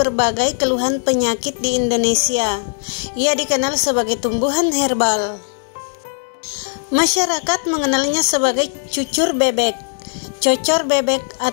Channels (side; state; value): right; silent; digital silence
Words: keluhan penyakit di Indonesia. Ia dikenal sebagai tumbuhan herbal. Masyarakat mengenalnya sebagai cucur bebek, cocor bebek